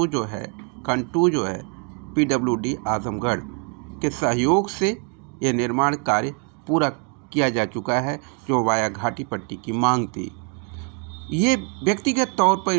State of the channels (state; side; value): quieter; left; 36.9 dB